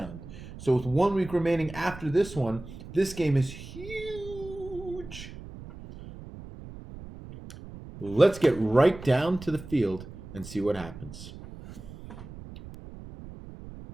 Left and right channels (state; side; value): noise; right; rumble, 14 dB below the sound